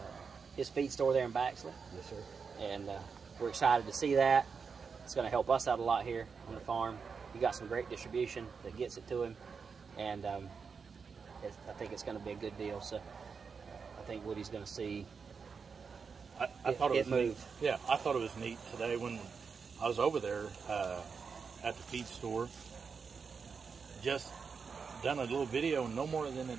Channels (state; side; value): quieter; left; 5.6 dB